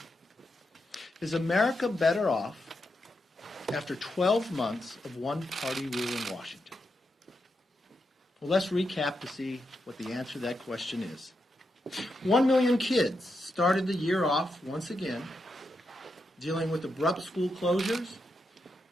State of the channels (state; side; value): normal; both; correlation 0.85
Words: Is America better off after 12 months of one-party rule in Washington? Well, let's recap to see what the answer to that question is. 1 million kids started the year off once again, dealing with abrupt school closures,